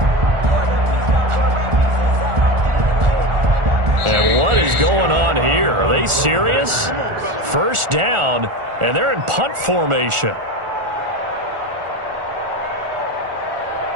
And what is going on here? Are they serious? First down, and they're in punt formation.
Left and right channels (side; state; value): left; late; 1.4 ms